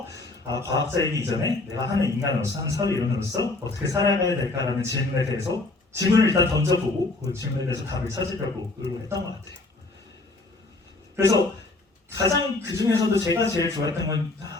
과학자이기 이전에 내가 하는 인간으로서 하는 사회 이론으로서 어떻게 살아가야 될까라는 질문에 대해서 질문을 일단 던져보고 그 질문에 대해서 답을 찾으려고 노력했던 것 같아요. 그래서 가장 그 중에서도 제가 제일 좋아했던 건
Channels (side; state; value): right; quieter; 3.1 dB